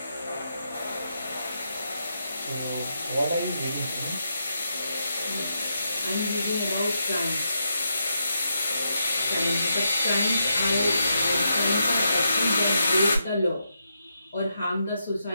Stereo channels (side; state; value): both; inverted; correlation -0.82